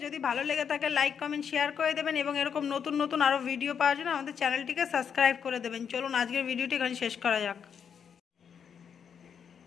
যদি ভালো লেগে থাকে লাইক কমেন্ট শেয়ার করে দেবেন এবং এরকম নতুন নতুন আরও ভিডিও পাওয়ার জন্য আমাদের চ্যানেলটিকে সাবস্ক্রাইব করে দেবেন। চলুন আজকের ভিডিওটি এখানে শেষ করা যাক।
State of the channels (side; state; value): right; quieter; 7.4 dB